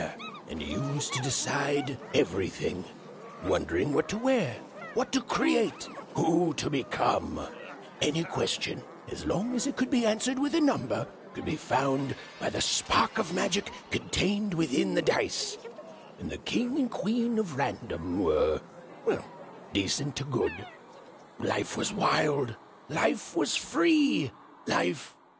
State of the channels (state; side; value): identical; both; correlation 1.00